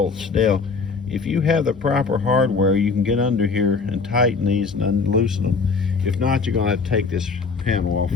Now, if you have the proper hardware, you can get under here and tighten these and unloosen them. If not, you're going to have to take this panel off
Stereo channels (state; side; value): quieter; right; 4.7 dB